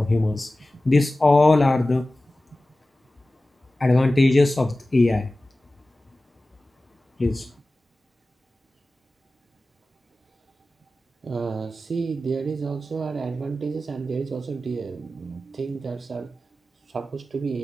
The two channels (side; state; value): both; normal; correlation 0.96